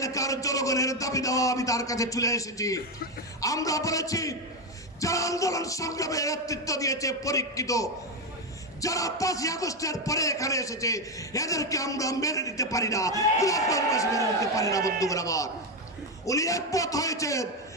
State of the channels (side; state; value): both; normal; correlation 0.09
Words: জনগণের দাবি দেওয়া আমি তার কাছে চলে এসেছি। আমরা বলেছি, যারা আন্দোলন সংগ্রামে নেতৃত্ব দিয়েছে পরীক্ষিত, যারা 5ই আগস্টের পরে এখানে এসেছে, এদেরকে আমরা মেনে নিতে পারি না, গোলাপগঞ্জবাসী মেনে নিতে পারি না বন্ধুগণ আমার। উনি একমত হয়েছেন,